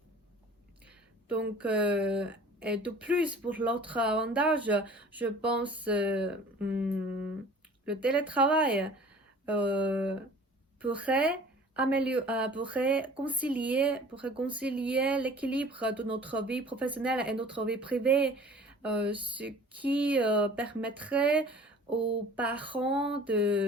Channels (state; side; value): normal; both; correlation 0.47